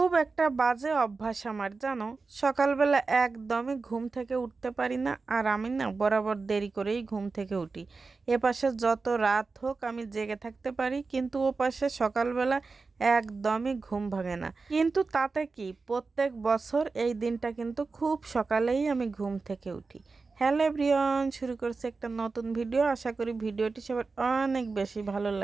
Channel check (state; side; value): quieter; left; 4.2 dB